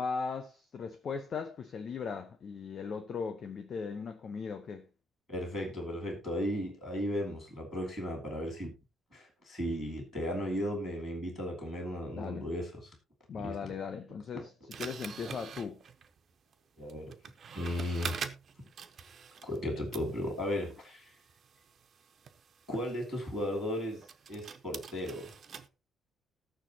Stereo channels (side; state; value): both; normal; correlation 0.69